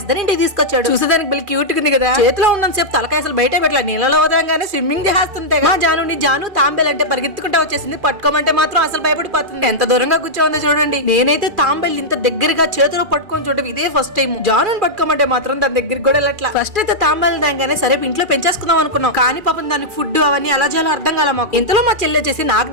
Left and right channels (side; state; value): left; late; 2.4 ms